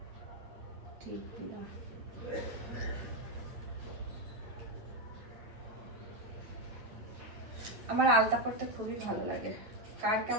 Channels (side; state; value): left; late; 9.1 ms